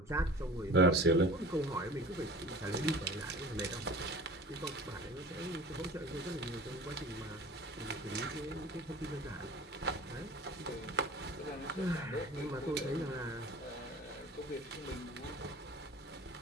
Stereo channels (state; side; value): normal; both; correlation 0.40